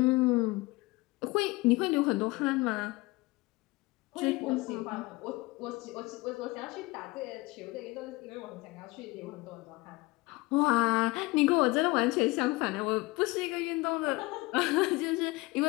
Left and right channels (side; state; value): right; quieter; 22.4 dB